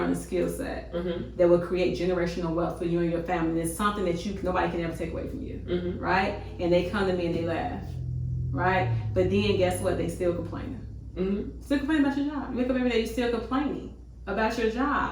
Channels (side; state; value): both; identical; correlation 1.00